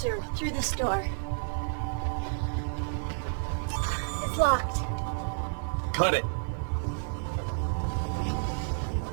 Through this door. It's locked. Cut it.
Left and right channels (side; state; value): left; silent; digital silence